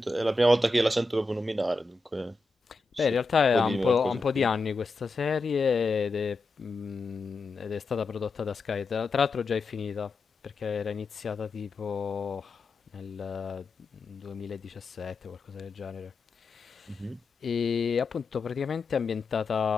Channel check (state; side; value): quieter; right; 3.4 dB